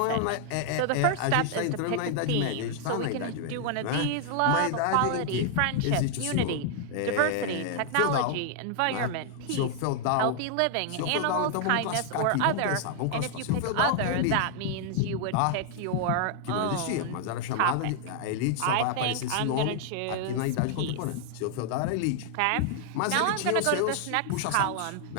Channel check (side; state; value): both; different; correlation 0.00